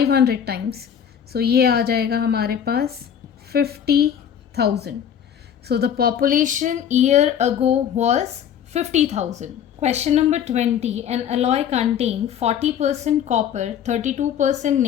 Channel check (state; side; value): quieter; right; 8.9 dB